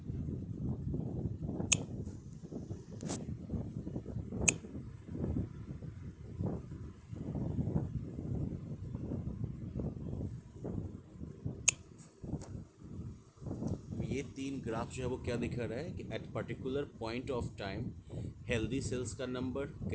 ये तीन ग्राफ जो है वो क्या दिखा रहा है कि at particular point of time healthy cells का नंबर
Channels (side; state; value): both; identical; correlation 1.00